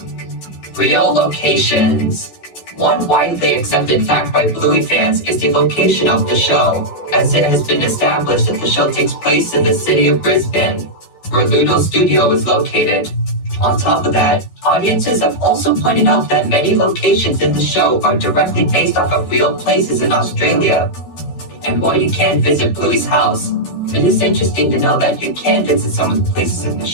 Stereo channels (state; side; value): late; right; 12 ms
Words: Real locations. One widely accepted fact by Bluey fans is the location of the show, as it has been established that the show takes place in the city of Brisbane, where Ludo Studio is located. On top of that, audiences have also pointed out that many locations in the show are directly based off of real places in Australia. And while you can't visit Bluey's house, it is interesting to know that you can visit some of the places in the